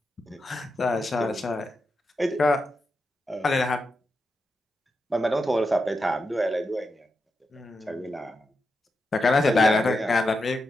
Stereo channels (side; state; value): both; normal; correlation 0.87